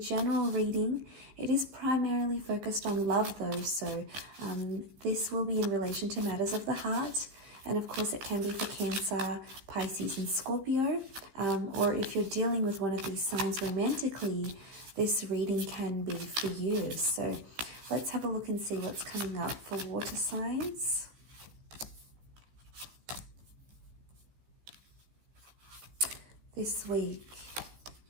reading. It is primarily focused on love though, so this will be in relation to matters of the heart. And of course, it can be for Cancer, Pisces, and Scorpio. Or if you're dealing with one of these signs romantically, this reading can be for you. So let's have a look and see what's coming up for water signs. This week.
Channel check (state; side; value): late; left; 15 ms